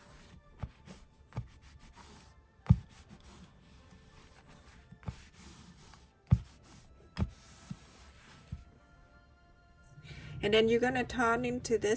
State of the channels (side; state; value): both; identical; correlation 1.00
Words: And then you're gonna turn into